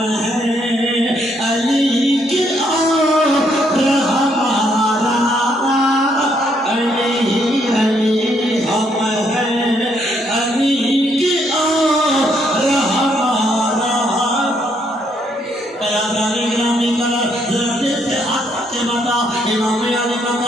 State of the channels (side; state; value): both; normal; correlation 0.72